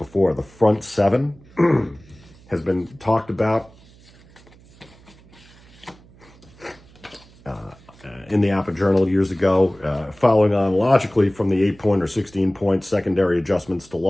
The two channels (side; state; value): right; noise; hum, 26 dB below the sound